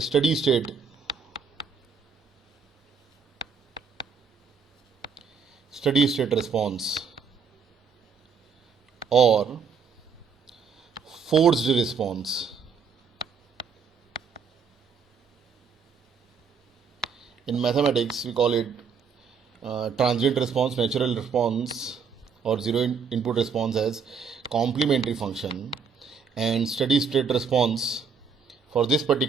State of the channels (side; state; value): left; quieter; 6.0 dB